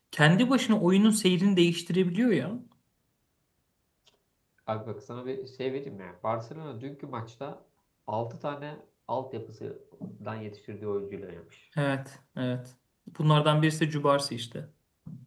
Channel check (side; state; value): both; identical; correlation 1.00